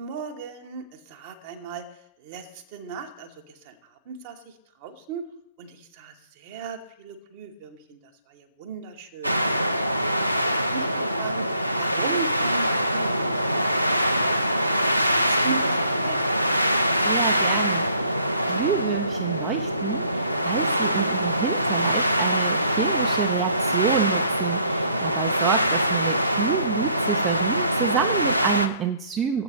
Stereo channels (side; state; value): both; inverted; correlation -0.62